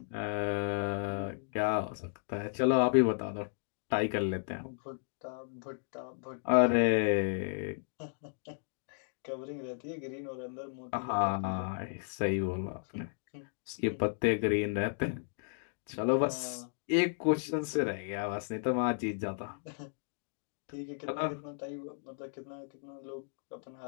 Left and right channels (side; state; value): right; silent; digital silence